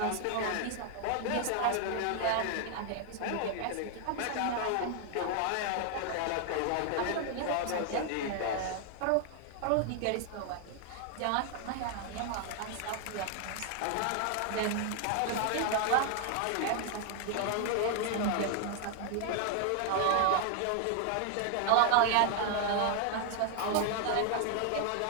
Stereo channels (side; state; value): both; different; correlation 0.00